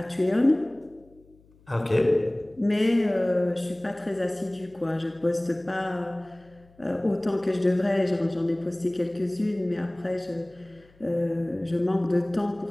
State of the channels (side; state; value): left; noise; hum, 29 dB below the sound